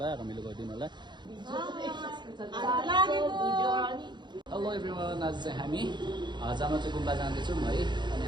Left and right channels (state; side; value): late; left; 0.22 ms